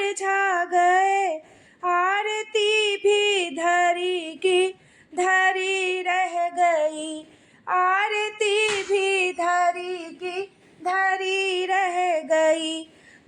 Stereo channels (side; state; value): both; identical; correlation 1.00